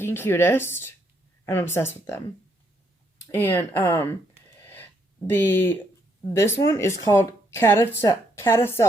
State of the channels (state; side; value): normal; both; correlation 0.74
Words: cutest? I'm obsessed with them. And this one is called